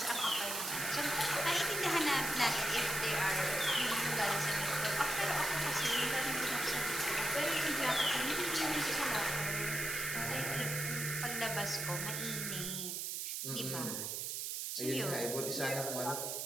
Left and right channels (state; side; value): noise; right; hiss, 3 dB below the sound